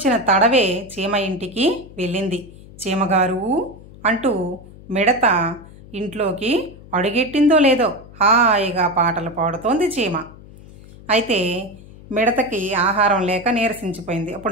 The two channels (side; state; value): left; noise; hum, 20 dB below the sound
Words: తడవే చీమ ఇంటికి వెళ్ళింది. చీమగారు అంటూ మిడత ఇంట్లోకి అడుగెట్టిందో లేదో హాయిగా పాటలు పాడుతోంది చీమ. అయితే మిడతకి ఆహారం లేక నీరసించిపోయింది.